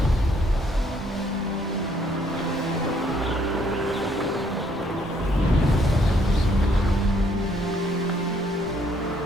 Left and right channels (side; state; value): both; normal; correlation 0.67